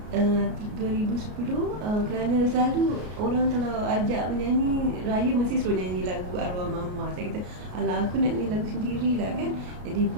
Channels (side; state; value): left; late; 33 ms